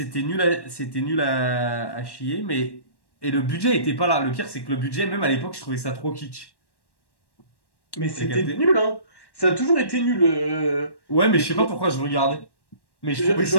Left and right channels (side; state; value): right; late; 1.1 ms